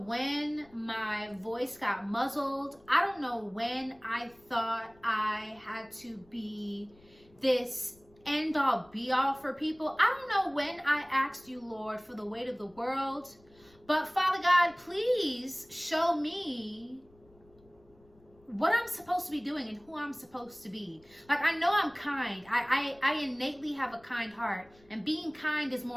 my voice got muzzled. I don't know when I thought I had to be this end all be all for people. I don't know when I asked you, Lord, for the weight of the world. But Father God, please show me what I'm supposed to be doing and who I'm supposed to be. Like, I know I'm kind. I innately have a kind heart. And being kind is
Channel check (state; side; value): noise; left; rumble, 29 dB below the sound